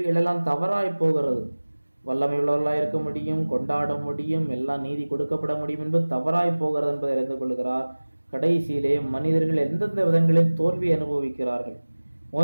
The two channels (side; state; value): both; inverted; correlation -1.00